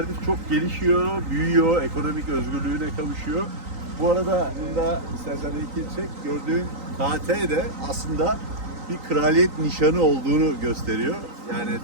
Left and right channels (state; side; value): late; left; 3.9 ms